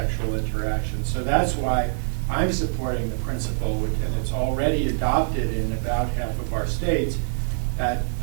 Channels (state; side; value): silent; left; digital silence